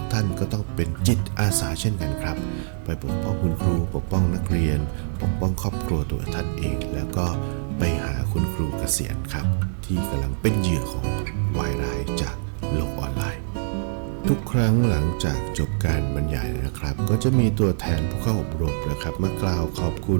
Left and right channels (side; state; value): left; silent; digital silence